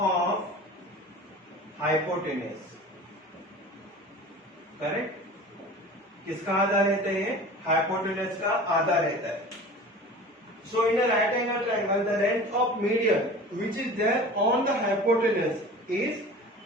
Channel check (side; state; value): both; normal; correlation 0.39